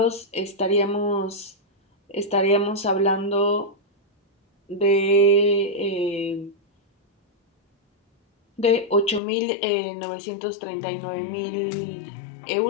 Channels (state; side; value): drops out; right; at 9.2 s